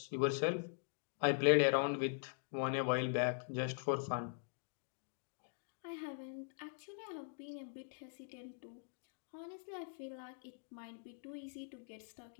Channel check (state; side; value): silent; right; digital silence